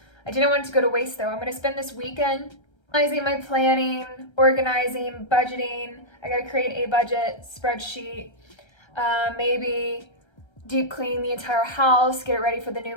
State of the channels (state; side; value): late; right; 1.3 ms